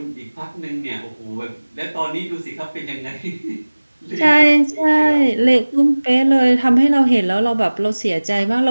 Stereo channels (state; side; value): inverted; both; correlation -1.00